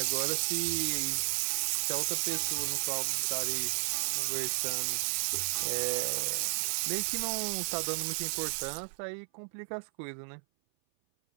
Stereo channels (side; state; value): left; silent; 56 dB below the other